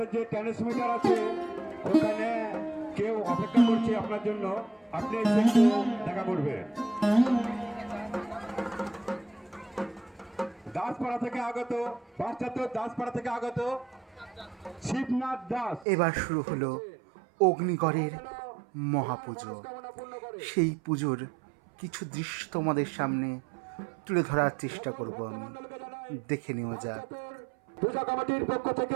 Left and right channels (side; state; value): left; drops out; at 15.9 s